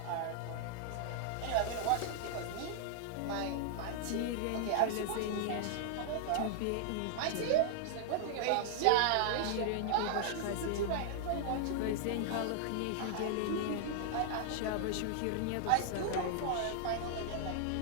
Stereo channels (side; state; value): both; different; correlation -0.01